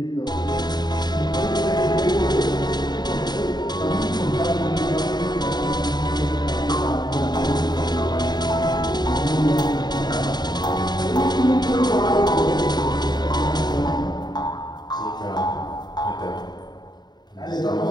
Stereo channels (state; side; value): late; right; 0.20 ms